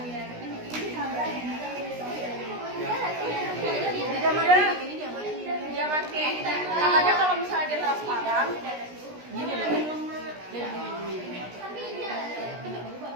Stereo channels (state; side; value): late; left; 16 ms